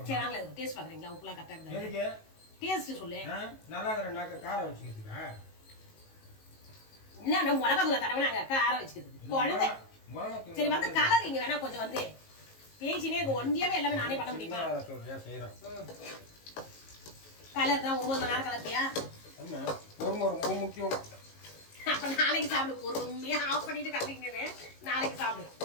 சரி நாங்களே டேஸ்ட் பாக்குறீங்களா? உப்புலாம் கரெக்டா இருக்கு. டேஸ்ட் சொல்லு. நல்லா இருக்கிற காரம் வச்சுக்கிறதுக்கா? என்ன மிளகா தூளை தடவை காரம் வச்சுக்கிறதுக்கு குழந்தை. சரி வந்து கலர் இங்க வேணா கொஞ்சம் வந்து பேசினே ஒன்றியாவே எல்லாமே நானே பண்ண முடியுமா? கலர் தான் 9 மணி நேரம் கலர்த்தியா? ரொம்ப முக்கியம். அப்ப நாளைக்கு சாப்பிடு. பொறுமையா ஆஃப் பண்ணிட்டு கலக்கிங்க. நாளைக்கு சாப்பிடு.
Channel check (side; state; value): right; late; 19 ms